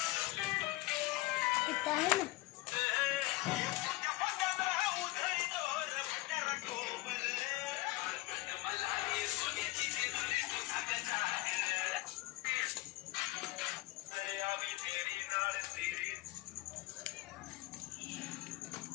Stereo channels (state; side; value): quieter; right; 19.7 dB